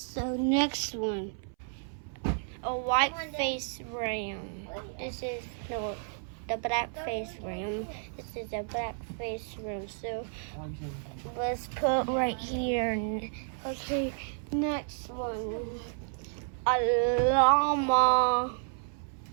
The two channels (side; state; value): left; silent; 57 dB below the other